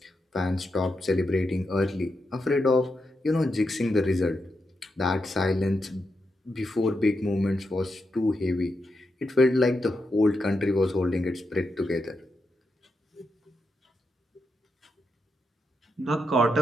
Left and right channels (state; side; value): normal; both; correlation 0.85